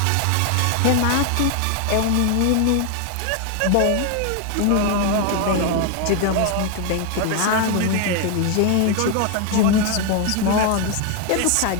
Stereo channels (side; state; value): both; different; correlation 0.01